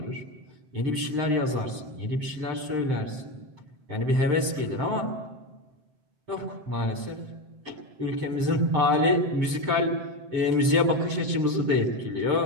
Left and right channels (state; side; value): late; left; 7.7 ms